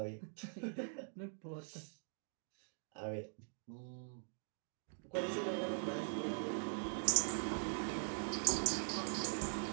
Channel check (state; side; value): silent; left; digital silence